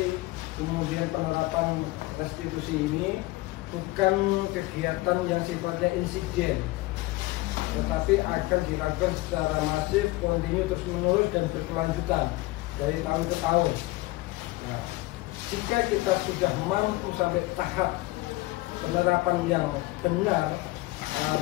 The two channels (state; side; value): quieter; right; 20.3 dB